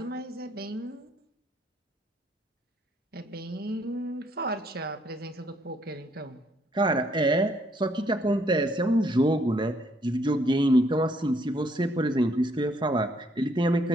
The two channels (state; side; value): normal; both; correlation 0.68